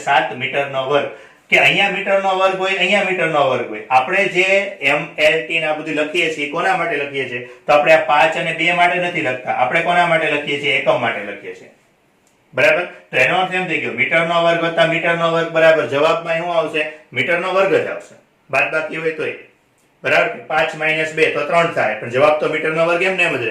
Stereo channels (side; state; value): both; identical; correlation 1.00